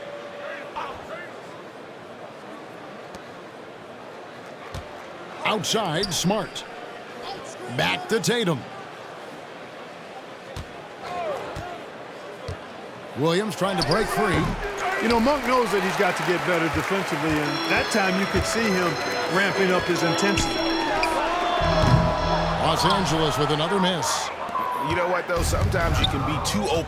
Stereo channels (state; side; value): identical; both; correlation 1.00